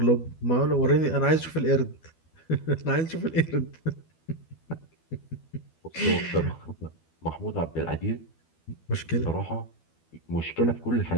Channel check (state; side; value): late; right; 12 ms